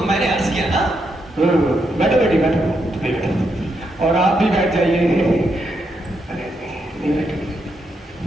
मैंने अर्ज किया ना। बैठो बेटी बैठो, बैठो, और आप भी बैठ जाइए। अरे नहीं बैठो,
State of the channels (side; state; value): both; normal; correlation 0.81